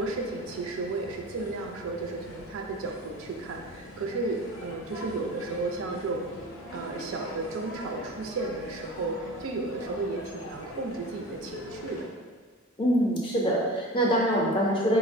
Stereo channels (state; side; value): normal; both; correlation 0.34